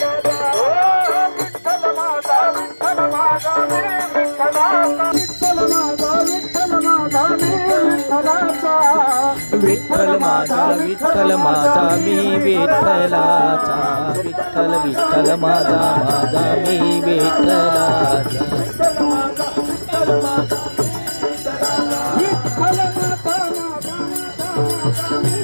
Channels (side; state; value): both; inverted; correlation -1.00